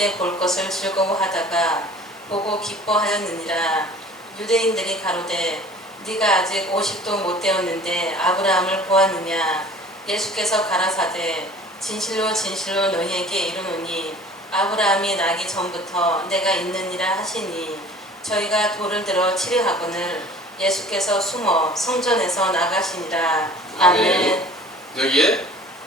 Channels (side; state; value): both; normal; correlation 0.47